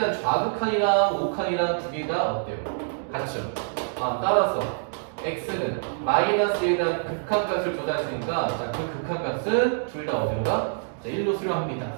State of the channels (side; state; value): left; silent; digital silence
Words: 좌극한이랑 우극한이랑 두 개 다 어때요? 같죠? 아, 따라서 x는 마이너스에 대한 극한값을 조사했으니까 자, 그 극한값은 둘 다 어디로 가? 자, 1로 수렴합니다.